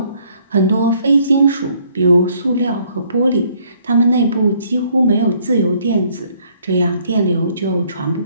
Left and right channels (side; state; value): both; inverted; correlation -0.64